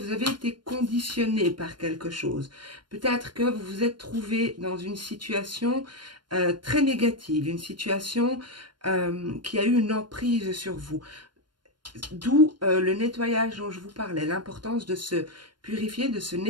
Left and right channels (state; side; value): late; left; 0.72 ms